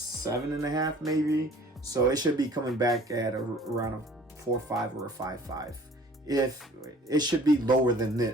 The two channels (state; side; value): normal; both; correlation 0.51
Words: maybe. So it should be coming back at around a 4.5 or a 5.5. If it should be lower than